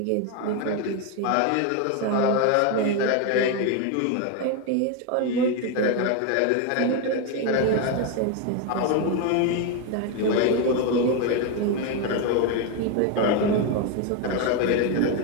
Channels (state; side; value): different; both; correlation 0.02